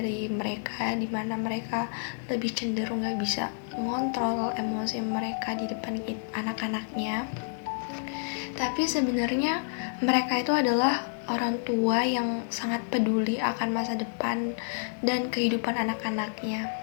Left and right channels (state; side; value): silent; right; digital silence